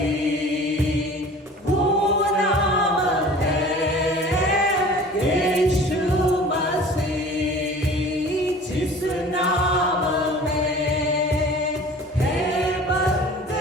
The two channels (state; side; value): normal; both; correlation 0.44